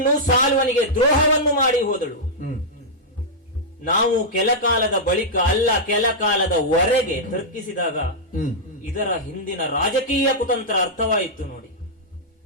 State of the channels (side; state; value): both; normal; correlation -0.08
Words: ಸಾಲ್ವನಿಗೆ ದ್ರೋಹವನ್ನು ಮಾಡಿ ಹೋದಳು. ನಾವು ಕೆಲ ಕಾಲದ ಬಳಿಕ ಅಲ್ಲ, ಕೆಲ ಕಾಲದವರೆಗೆ ತರ್ಕಿಸಿದಾಗ ಇದರ ಹಿಂದಿನ ರಾಜಕೀಯ ಕುತಂತ್ರ ಅರ್ಥವಾಯಿತು ನೋಡಿ.